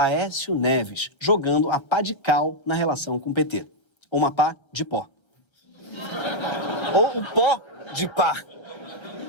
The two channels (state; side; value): late; right; 1.3 ms